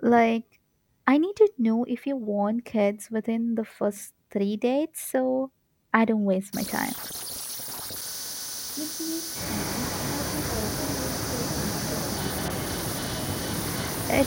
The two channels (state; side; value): identical; both; correlation 1.00